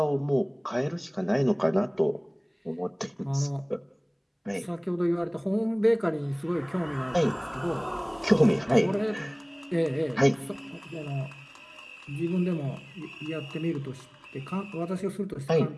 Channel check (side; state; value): both; identical; correlation 1.00